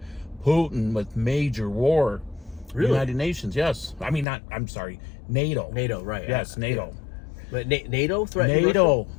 Putin with major war. Really? United Nations, yes. I mean, I'm sorry, NATO. NATO, right. Yes, NATO. But NATO threatened NATO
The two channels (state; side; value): drops out; right; at 4.2 s